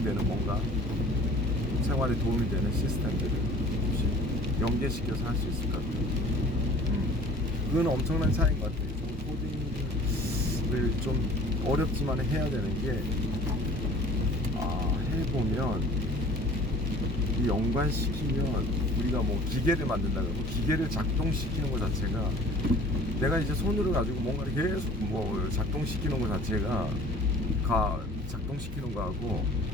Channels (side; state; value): both; normal; correlation 0.48